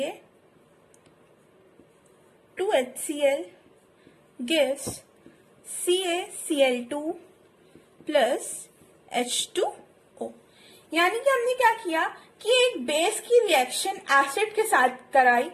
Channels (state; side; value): identical; both; correlation 1.00